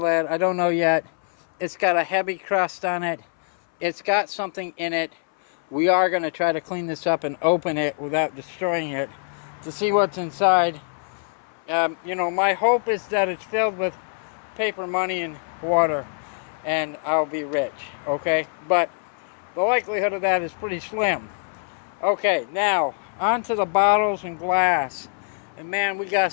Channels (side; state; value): right; silent; 60 dB below the other